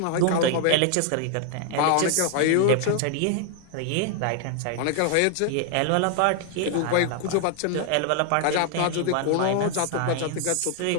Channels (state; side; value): different; both; correlation 0.00